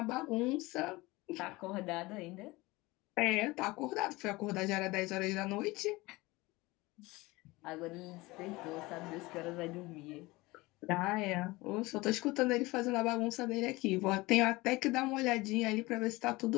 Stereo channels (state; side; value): quieter; right; 21.5 dB